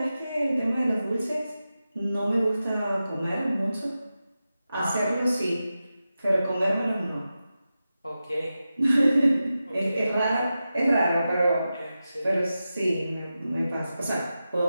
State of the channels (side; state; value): both; inverted; correlation -0.92